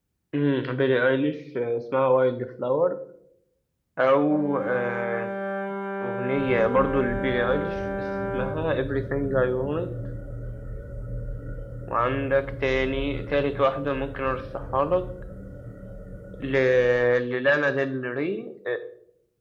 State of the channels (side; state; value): both; identical; correlation 1.00